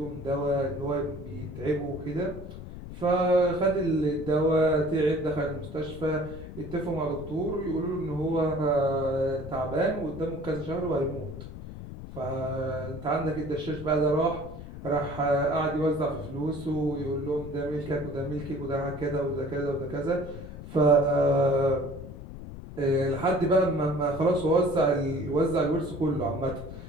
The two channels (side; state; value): left; noise; rumble, 12 dB below the sound